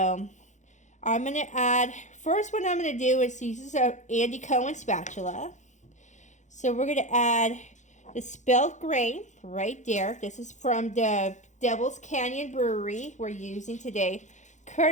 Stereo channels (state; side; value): late; right; 0.35 ms